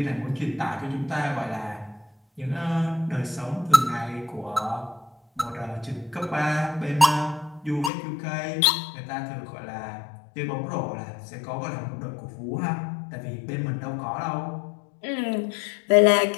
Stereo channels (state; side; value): drops out; right; at 7.9 s